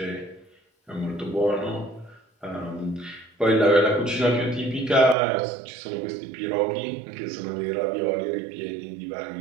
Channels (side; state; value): left; drops out; at 5.2 s